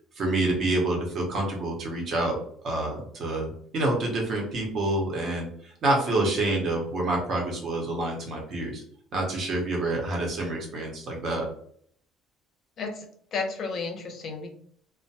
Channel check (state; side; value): normal; both; correlation 0.58